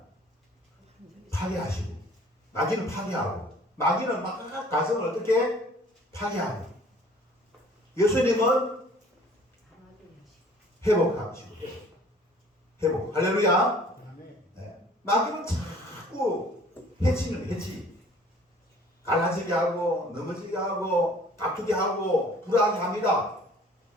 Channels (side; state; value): both; normal; correlation 0.53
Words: 파괴하시고, 마귀는 파괴하고, 마귀는 막 가정을 어떻게 파괴하고, 예수님은 회복하시고, 회복. 할렐루야. 네. 마귀는 자꾸 해치는 해치. 갈라지게 하고, 넘어지게 하고, 다투게 하고, 불안하게 합니다.